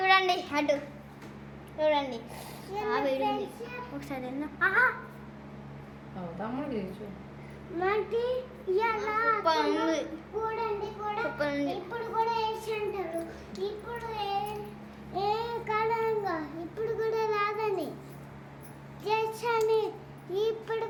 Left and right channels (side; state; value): both; identical; correlation 1.00